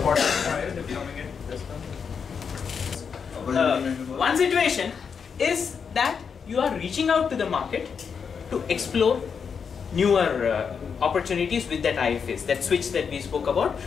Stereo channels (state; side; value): quieter; right; 6.3 dB